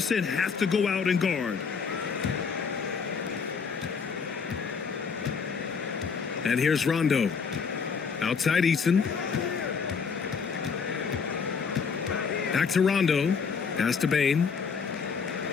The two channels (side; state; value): right; quieter; 5.8 dB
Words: have to go out and guard. And here's Rondo. Outside Eason. Back to Rondo. Pass to Bane.